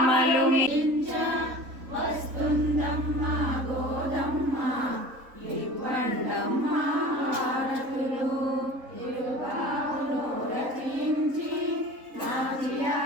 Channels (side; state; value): left; late; 3.8 ms